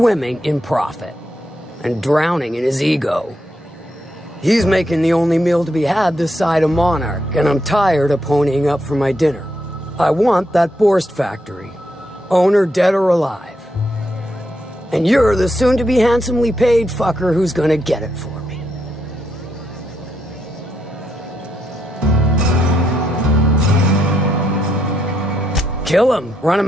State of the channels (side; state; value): both; normal; correlation 0.79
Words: in profit and drowning in his ego. He's making the only meal to be had this side of Monarch, and I'm tired of ponying up for my dinner. I want that Borst factory, owner dead or alive. And you're the soon-to-be handsomely paid fucker who's gonna get it for me. Kill him, run him